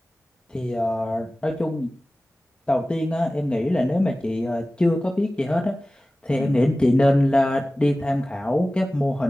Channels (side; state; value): both; normal; correlation 0.97